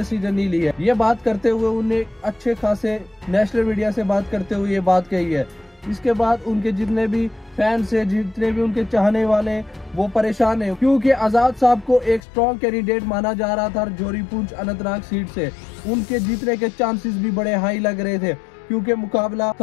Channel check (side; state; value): right; drops out; at 12.2 s